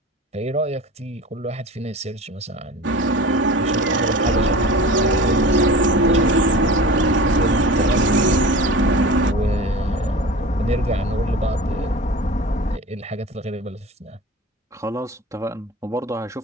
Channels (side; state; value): both; normal; correlation 0.36